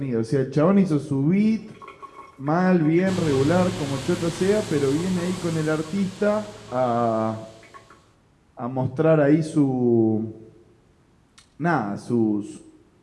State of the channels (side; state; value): both; identical; correlation 1.00